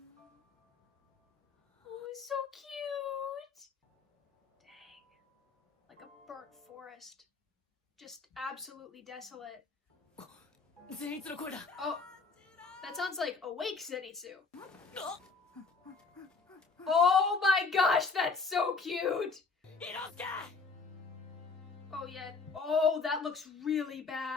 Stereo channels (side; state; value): right; quieter; 4.4 dB